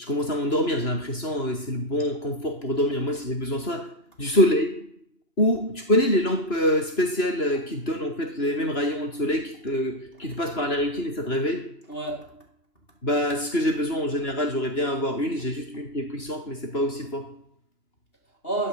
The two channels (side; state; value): right; late; 2.9 ms